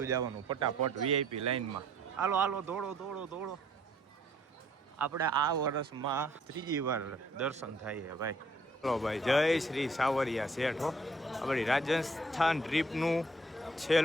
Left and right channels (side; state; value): both; normal; correlation 0.62